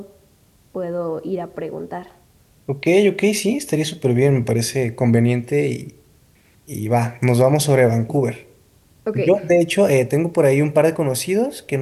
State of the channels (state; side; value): identical; both; correlation 1.00